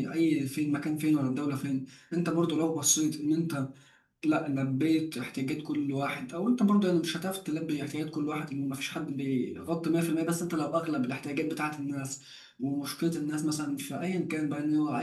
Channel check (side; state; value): both; identical; correlation 1.00